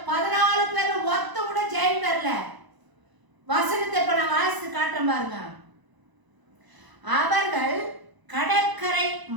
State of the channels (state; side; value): late; left; 1.0 ms